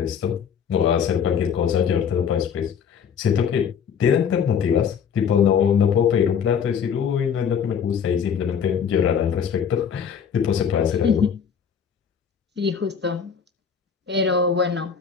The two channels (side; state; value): right; quieter; 7.2 dB